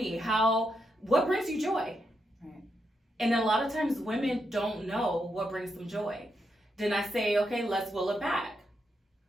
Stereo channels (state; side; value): normal; both; correlation 0.82